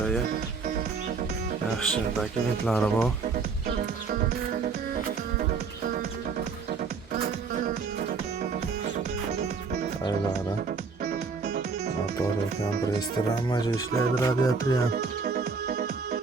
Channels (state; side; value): quieter; left; 4.9 dB